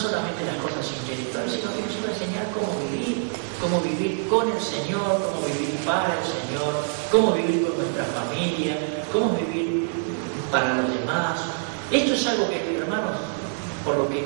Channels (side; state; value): left; silent; digital silence